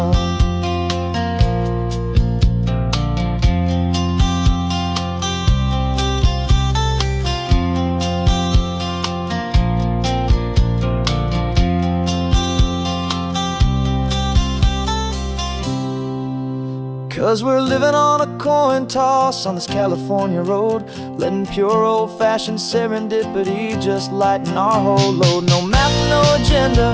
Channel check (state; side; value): identical; both; correlation 1.00